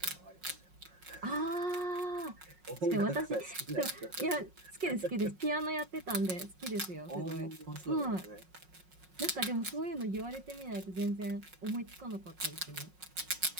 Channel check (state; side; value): late; left; 5.5 ms